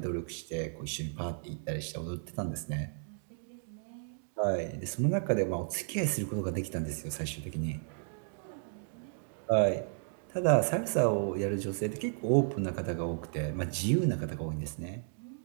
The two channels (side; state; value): left; silent; digital silence